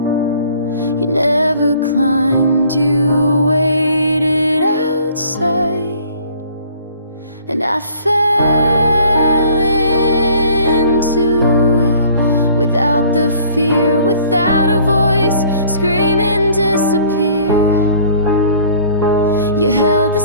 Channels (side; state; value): both; inverted; correlation -0.54